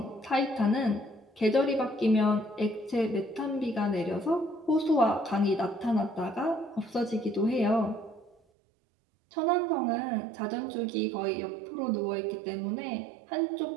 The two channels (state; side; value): drops out; left; at 8.3 s